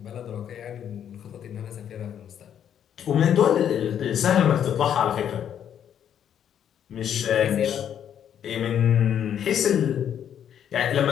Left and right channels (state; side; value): quieter; right; 9.3 dB